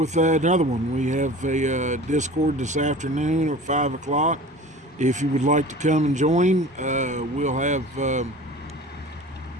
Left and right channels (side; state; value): both; normal; correlation 0.40